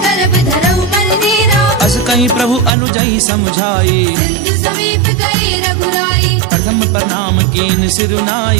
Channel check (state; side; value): drops out; left; at 2.7 s